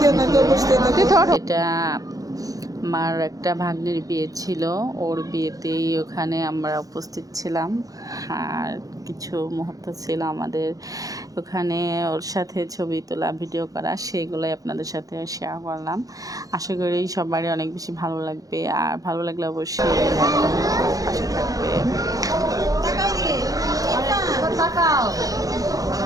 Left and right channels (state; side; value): late; left; 0.17 ms